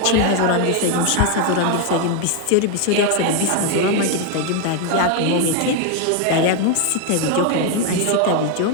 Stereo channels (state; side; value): different; both; correlation 0.01